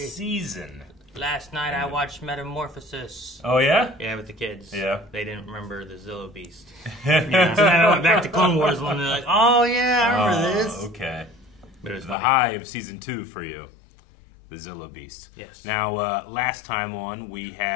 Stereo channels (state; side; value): drops out; right; at 12.2 s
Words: season. Last night I watched Metamorphosis. Oh, yeah? Yeah, with the kids. Yeah. They didn't remember the Zillo Beast. Yeah. So then I went back to Clone Wars and they're like, oh yeah, I remember this. Okay. But it was The funny. high of season 2 for you. The Zillo Beast. Yes. Now, last time on, we